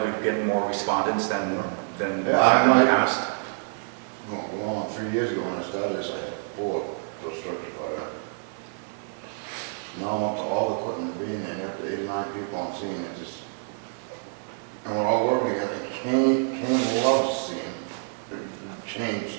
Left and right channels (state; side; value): silent; left; digital silence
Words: we've getting more respondents than Yeah, I in the might- past. Well, 3 years ago when I started this, I had 4 for structure fire. Now I'm up to all the equipment being there, up to 8 or 9 people on scene, it just, and we're all working together. Kane loves seeing the change